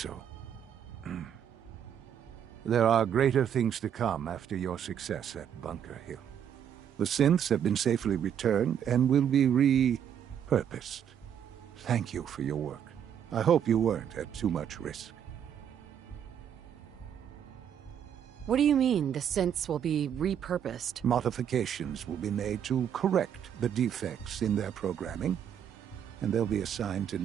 There are greater things to come after your success at Bunker Hill. The synths have been safely returned and will be repurposed. Thank you for your work. I hope you weren't at too much risk. What do you mean, the synths will be repurposed? Modifications will be made to correct the defects in their programming, and they'll be assigned to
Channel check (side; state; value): left; quieter; 9.0 dB